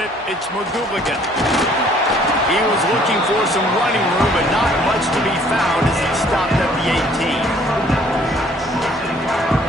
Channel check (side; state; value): both; normal; correlation 0.59